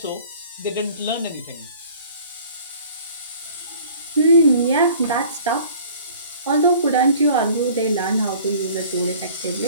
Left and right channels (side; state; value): both; inverted; correlation -0.49